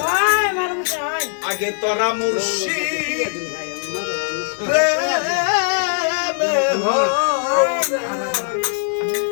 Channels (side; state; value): right; silent; digital silence